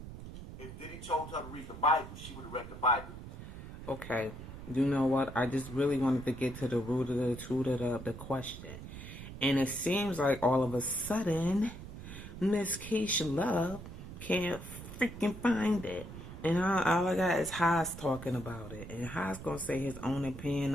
If Diddy told her to read the Bible, she would have read the Bible. Okay. You know what? I just really wanted to get to the root of the question. And it seems like all of a sudden, Miss Keisha Love can't freaking find it. And all I got is Haas talking about it. And Haas going to say his own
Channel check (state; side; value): noise; right; rumble, 12 dB below the sound